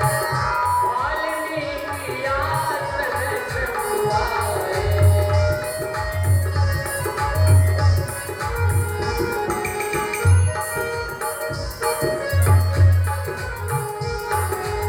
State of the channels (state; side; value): identical; both; correlation 1.00